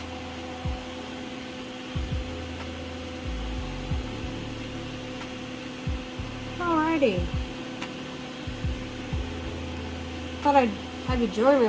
Alrighty. Thought I'd have you join me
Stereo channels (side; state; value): both; identical; correlation 1.00